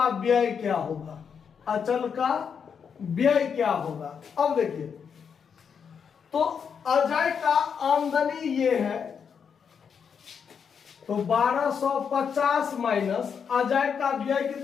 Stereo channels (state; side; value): quieter; right; 6.8 dB